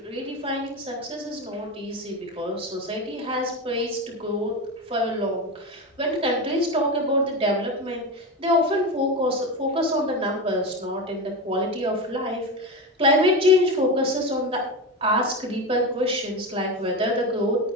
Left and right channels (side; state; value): both; normal; correlation 0.20